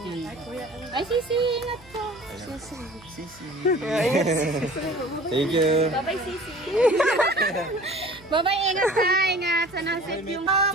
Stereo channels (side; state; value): right; noise; hum, 24 dB below the sound